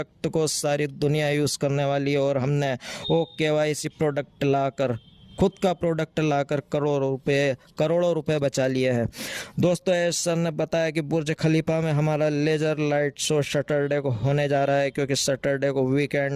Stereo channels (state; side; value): identical; both; correlation 1.00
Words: को सारी दुनिया यूज़ करने वाली है। और हमने KYC प्रोडक्ट लाकर, खुद का प्रोडक्ट लाकर करोड़ों रुपए बचा लिए हैं। दोस्तों एस सर ने बताया कि बुर्ज खलीफा में हमारा लेज़र लाइट शो सैटरडे को होने जा रहा है, क्योंकि सैटरडे को